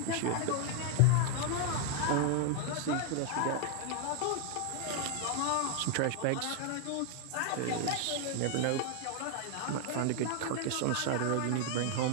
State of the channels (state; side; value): different; both; correlation 0.00